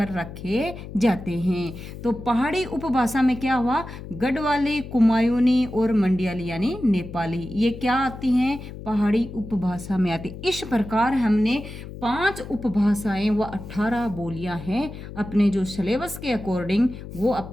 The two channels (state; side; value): noise; left; hum, 12 dB below the sound